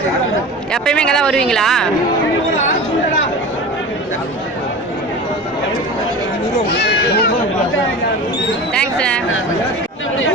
எப்பயுமே இங்கே தான் வருவீங்களா? தேங்க்ஸ்.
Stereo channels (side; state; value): both; normal; correlation 0.33